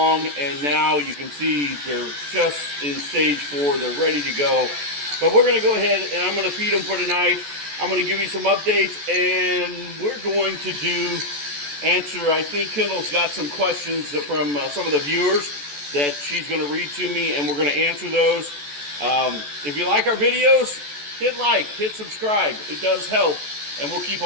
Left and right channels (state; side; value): late; left; 14 ms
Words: and now you can see they're just in stage 4. They're ready to go. But we're going to go ahead and I'm going to feed them for tonight. I'm going to give you some updates, and we're going to answer, I think Kendall's got some questions from some of the viewers that she's going to read to me, and we're going to answer those. If you like our videos, hit like, hit subscribe. It does help, and we'll keep